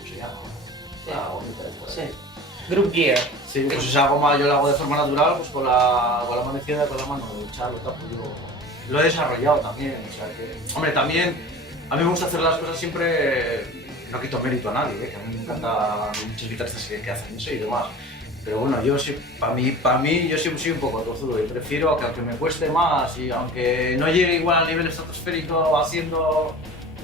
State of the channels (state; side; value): normal; both; correlation 0.38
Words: se llama, la gomita esta. Sí. Group Gear. Sí, pues esa goma yo la hago de forma natural, pues con la mano izquierda y con la mano derecha, lo tapo yo. Lo he desarrollado también, o sea que... Hombre, también a mí me gusta hacer las cosas siempre, no quito mérito a nadie, que a mí me encanta muchos guitarristas que hacen eso y demás. Pero bueno, yo sí, para mí yo siempre soy un poco tozudo y prefiero que aunque me cueste más y aunque no llegue igual al nivel estratosférico